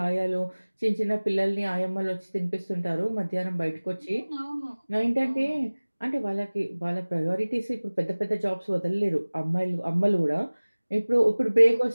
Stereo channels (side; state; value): both; inverted; correlation -1.00